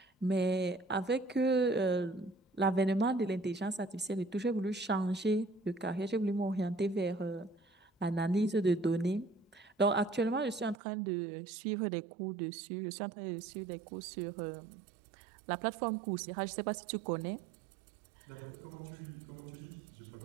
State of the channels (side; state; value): left; drops out; at 10.8 s